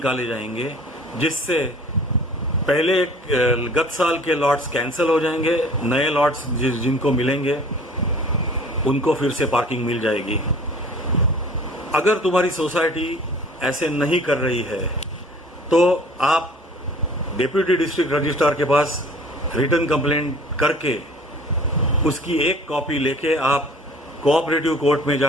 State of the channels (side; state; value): both; normal; correlation 0.48